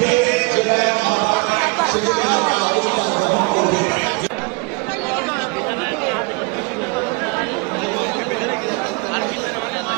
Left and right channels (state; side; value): quieter; left; 29.6 dB